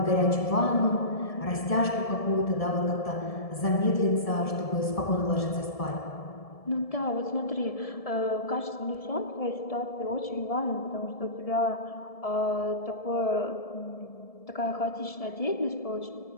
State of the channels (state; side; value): late; right; 1.7 ms